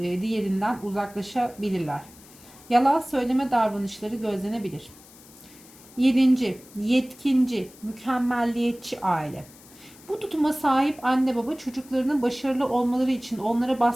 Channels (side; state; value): left; noise; hiss, 23 dB below the sound